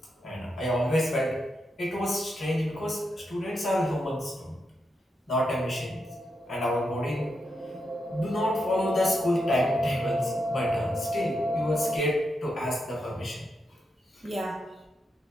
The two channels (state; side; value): normal; both; correlation 0.84